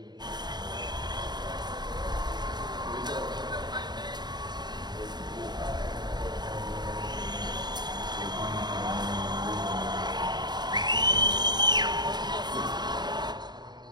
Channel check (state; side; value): late; left; 0.20 ms